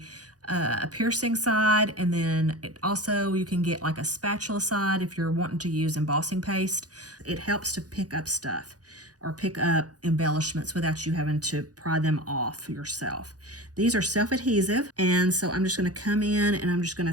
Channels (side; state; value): left; late; 0.68 ms